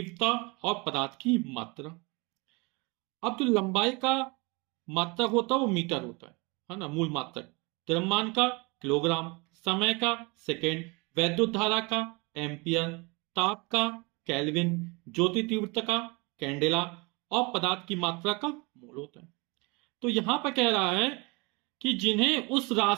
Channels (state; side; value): quieter; left; 27.6 dB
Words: और पदार्थ की मात्रा। अब जो लंबाई का मात्रक होता है वो मीटर होता है ना, मूल मात्रक। द्रव्यमान का किलोग्राम, समय का सेकेंड, वैद्युत धारा का एम्पियर, ताप का केल्विन, ज्योति तीव्रता का कैंडेला और पदार्थ की मात्रा का मोल होता है। तो यहां पर कह रहा है कि जिन्हें उस